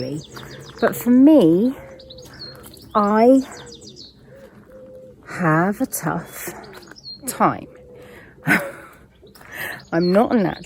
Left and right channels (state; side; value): identical; both; correlation 1.00